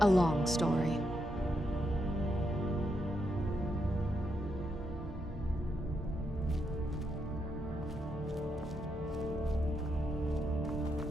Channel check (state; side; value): normal; both; correlation 0.81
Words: a long story.